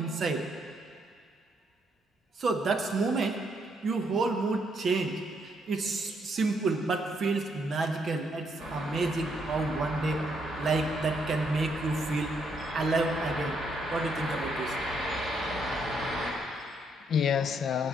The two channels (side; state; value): both; normal; correlation 0.74